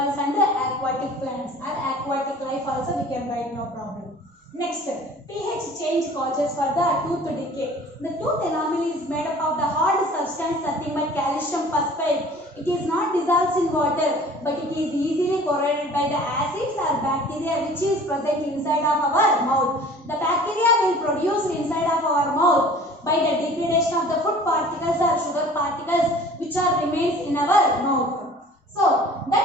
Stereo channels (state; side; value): normal; both; correlation 0.47